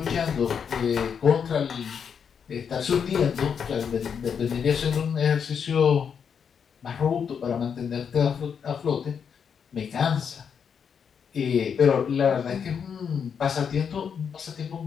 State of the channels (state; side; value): quieter; right; 7.0 dB